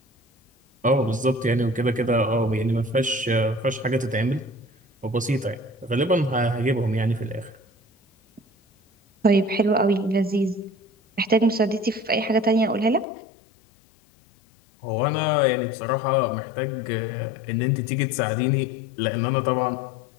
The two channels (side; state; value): right; drops out; at 13.1 s